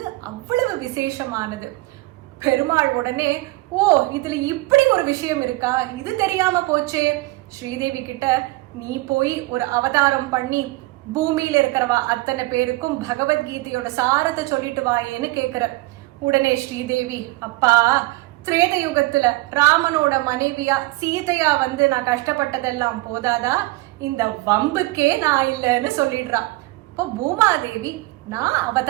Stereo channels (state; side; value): quieter; left; 21.2 dB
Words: அவ்வளவு விசேஷமானது. பெருமாள் உடனே, ஓ இதுல இப்படி ஒரு விஷயம் இருக்கா, இது தெரியாம போச்சே, ஸ்ரீதேவி கிட்ட நீ போய் ஒரு அவதாரம் பண்ணி பூமியில இருக்கிறவா அத்தனை பேருக்கும் பகவத்கீதையோட சாரத்தை சொல்லிட்டு வாயேன்னு கேக்குற. உடனே ஸ்ரீதேவி, அப்பா திரேத யுகத்துல ராமனோட மனைவியா சீதையா வந்து நான் கஷ்டப்பட்டதெல்லாம் போதாதா, இந்த வம்புக்கே நான் இல்லைன்னு சொல்லிடுறா. இப்போ பூமாதேவி, நான்